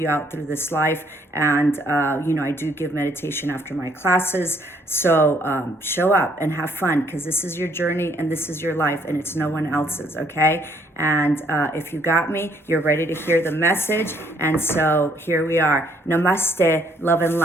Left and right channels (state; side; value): normal; both; correlation 0.66